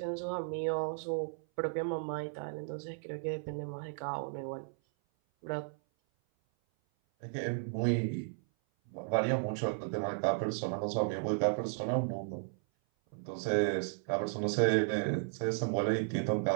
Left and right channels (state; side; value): silent; left; 55 dB below the other